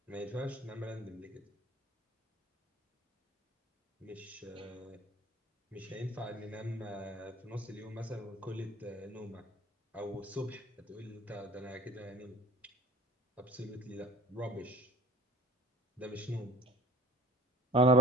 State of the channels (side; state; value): both; normal; correlation 0.43